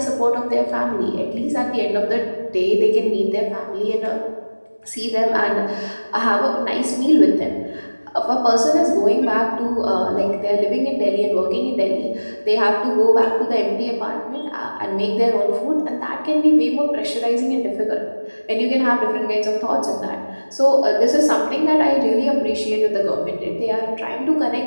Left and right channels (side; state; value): both; inverted; correlation -1.00